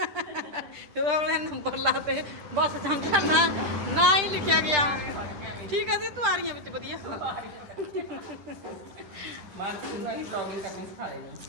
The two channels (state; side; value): late; left; 10 ms